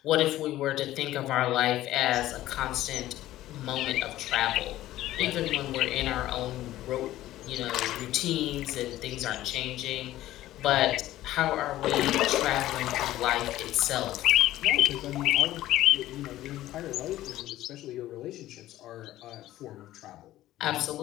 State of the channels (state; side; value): quieter; right; 14.8 dB